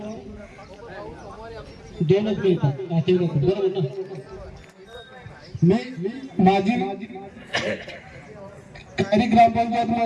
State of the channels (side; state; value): both; identical; correlation 1.00